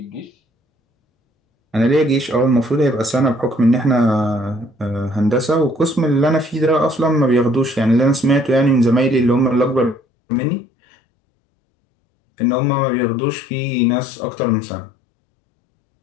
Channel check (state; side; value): drops out; right; at 10.0 s